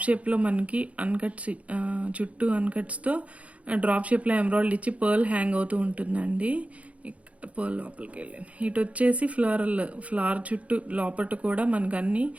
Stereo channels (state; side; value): late; left; 0.066 ms